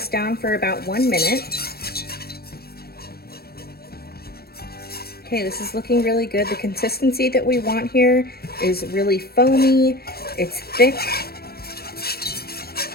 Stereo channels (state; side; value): late; right; 0.45 ms